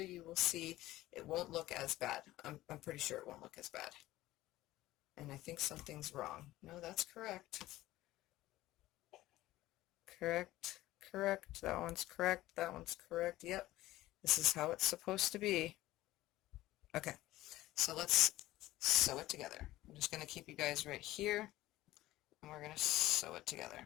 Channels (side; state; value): right; quieter; 16.4 dB